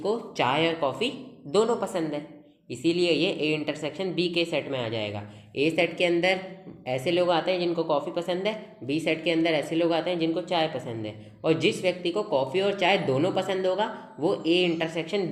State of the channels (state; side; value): identical; both; correlation 1.00